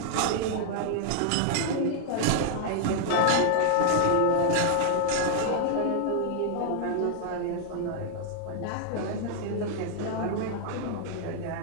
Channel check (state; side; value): different; both; correlation 0.00